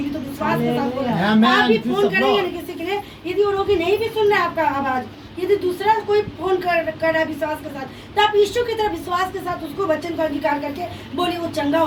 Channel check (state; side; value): identical; both; correlation 1.00